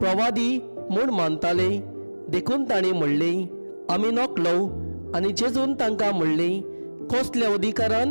म्हूण मानताले. देखून तांणी म्हणलें, आमी नकलो. आनी जेजून तांकां म्हणलें, कसल्या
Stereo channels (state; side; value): inverted; both; correlation -1.00